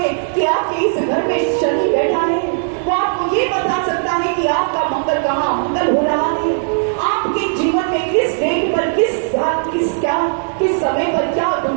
कि आपके इस घर में शनि बैठा है, वो आपको ये बता सकता है कि आपका मंगल कहाँ मंगल हो रहा है, आपके जीवन में किस डेट पर, किस साल, किस समय पर क्या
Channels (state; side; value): silent; left; 68 dB below the other